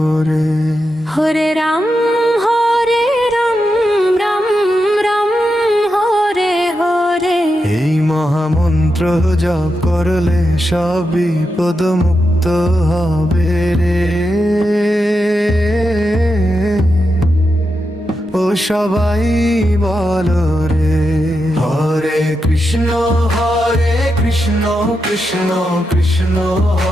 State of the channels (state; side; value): normal; both; correlation 0.87